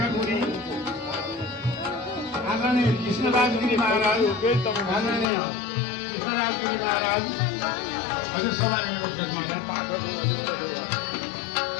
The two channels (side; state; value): right; drops out; at 5.2 s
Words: आदरणीय कृष्णराज गिरी महाराज, आदरणीय कृष्णराज गिरी महाराज, हजुर सवारी महाराज,